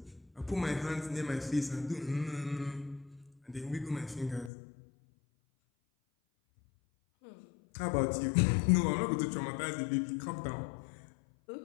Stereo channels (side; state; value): right; drops out; at 4.5 s